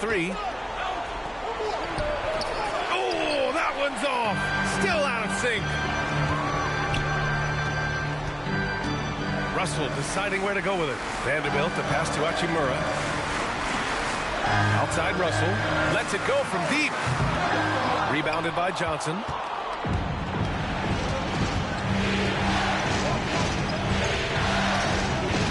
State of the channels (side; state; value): both; identical; correlation 1.00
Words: Oh, that one's off. Still out of sync. Russell deciding where to go with it. Vanderbilt to pass to Hachimura. Outside Russell. Lets it go from deep. Rebounded by Johnson.